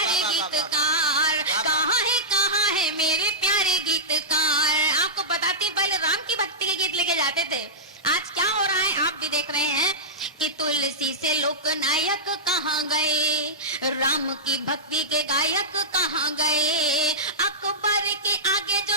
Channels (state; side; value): normal; both; correlation -0.14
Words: गीतकार, कहाँ है मेरे प्यारे गीतकार। आपको बताती बलराम की भक्ति के गीत लेके जाते थे, आज क्या हो रहा है आप भी देख रहे हैं कि तुलसी से लोकनायक कहाँ गए, राम की भक्ति के गायक कहाँ गए, अकबर के आगे